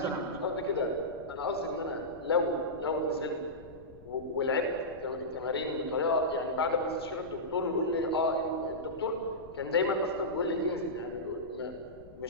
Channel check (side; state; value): left; noise; rumble, 20 dB below the sound